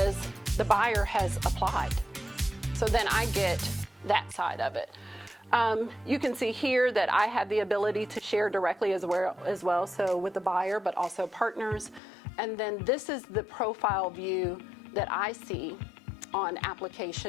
the buyer has applied. So then I get that side of it. You can see here that I have the ability to share directly as well, so with the buyer, but also partners. And then this is the profile view that I see on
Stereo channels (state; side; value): drops out; right; at 12.0 s